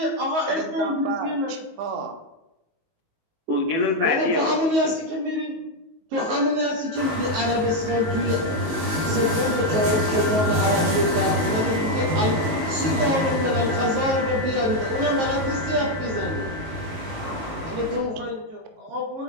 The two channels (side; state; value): left; late; 19 ms